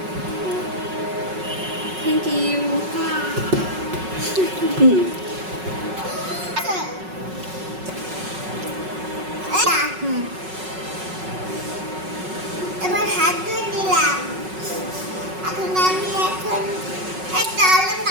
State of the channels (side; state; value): left; late; 5.4 ms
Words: Thank you. আসো। এই না, হুম এবার হাত ধুয়ে নিলাম। এখন আমি এই তাহলে